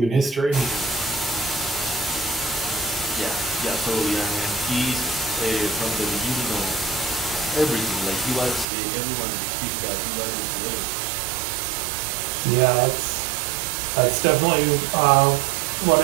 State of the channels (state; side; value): drops out; left; at 8.7 s